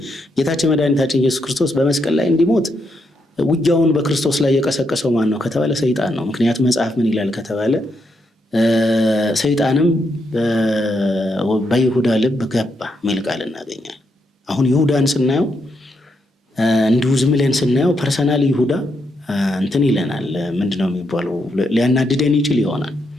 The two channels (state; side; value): normal; both; correlation 0.80